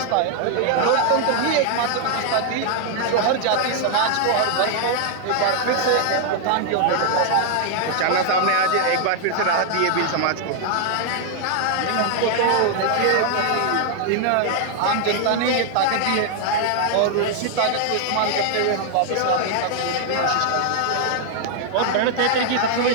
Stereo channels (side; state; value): both; different; correlation 0.00